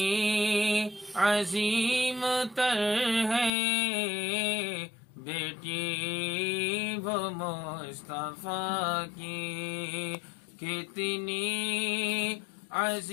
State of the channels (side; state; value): right; drops out; at 3.5 s